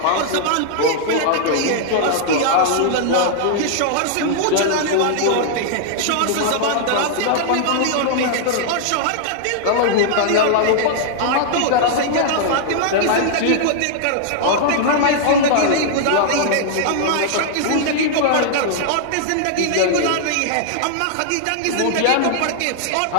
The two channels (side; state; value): both; different; correlation -0.01